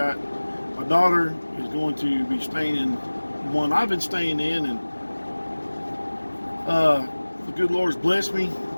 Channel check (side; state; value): both; inverted; correlation -1.00